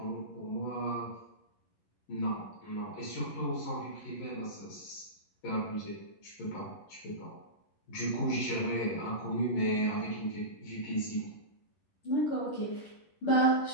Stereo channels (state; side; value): late; right; 11 ms